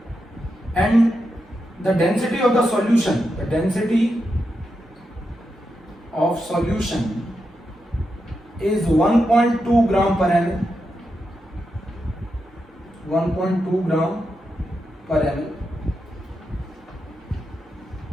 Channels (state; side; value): normal; both; correlation 0.86